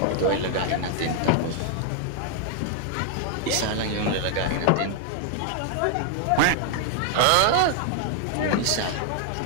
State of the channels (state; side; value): different; both; correlation 0.00